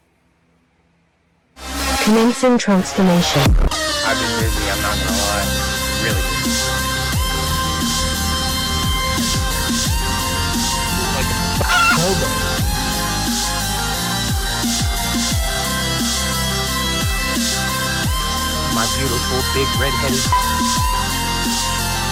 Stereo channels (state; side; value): identical; both; correlation 1.00